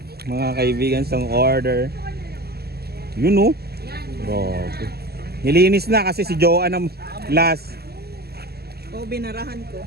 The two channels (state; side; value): late; left; 0.46 ms